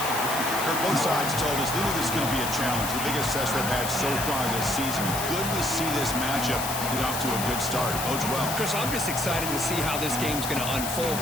Kirk, both sides told us they knew this is going to be a challenge, the biggest test they've had so far this season. Good to see this matchup get off to a good start. Bodes well. Chris, I'm just excited to see how this game's going to unfold.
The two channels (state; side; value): noise; left; hiss, 4 dB below the sound